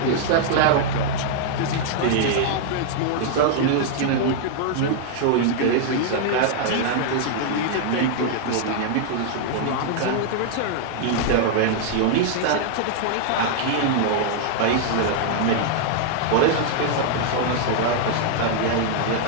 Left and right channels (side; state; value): both; different; correlation -0.01